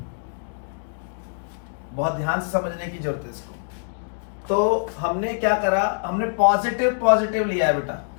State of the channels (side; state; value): right; silent; digital silence